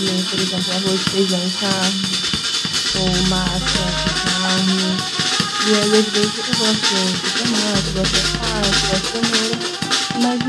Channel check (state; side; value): identical; both; correlation 1.00